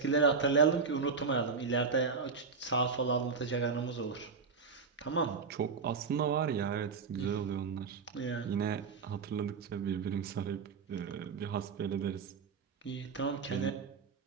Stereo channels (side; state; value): left; quieter; 5.1 dB